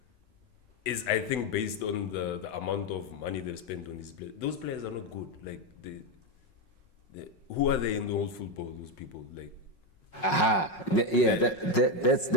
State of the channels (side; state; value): right; late; 5.4 ms